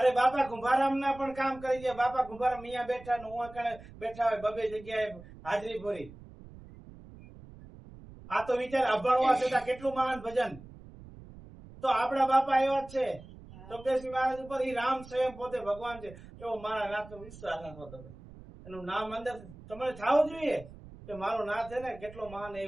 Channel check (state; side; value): noise; right; rumble, 18 dB below the sound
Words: બાપા કુંભારામ ના પણ કામ કરી ગયા. બાપા કુંભારામ મિયા બેઠા ને હું બેઠા હોય બબે જગ્યાએ હાજરી પૂરી. આ તો વિચાર અભણવા છતાં કેટલું મહાન ભજન. તો આપણા બાપા એવા જ છે. ચોક્કસી મહારાજ ઉપર ઈ રામ સ્વયં પોતે ભગવાન છે એવો મારા નાથ નો વિશ્વાસ રાખો. તમે એનું નામ અંદર તમારે થવું જોઈએ કે મારો નાથ છે ને કેટલો મહાન.